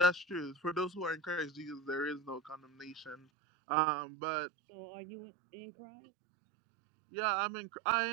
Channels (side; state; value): left; drops out; at 3.2 s